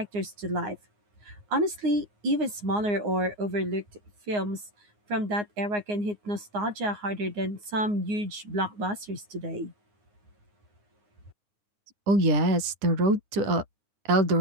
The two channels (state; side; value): late; left; 9.7 ms